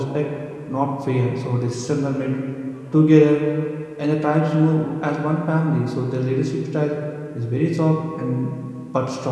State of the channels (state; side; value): identical; both; correlation 1.00